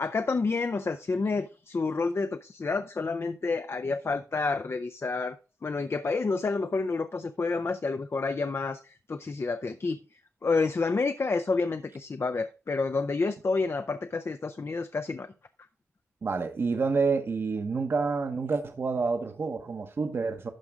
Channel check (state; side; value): normal; both; correlation 0.83